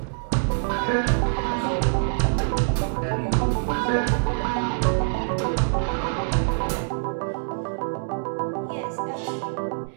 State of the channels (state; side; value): silent; left; digital silence